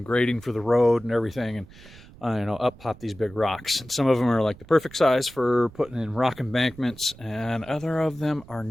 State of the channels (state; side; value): noise; right; rumble, 21 dB below the sound